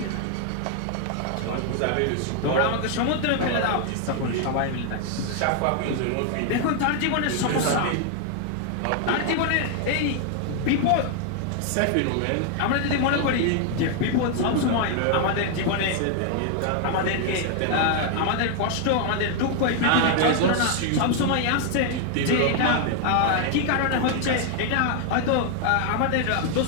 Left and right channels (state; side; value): different; both; correlation 0.00